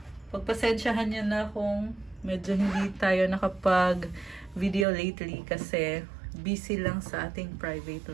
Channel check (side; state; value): left; drops out; at 4.9 s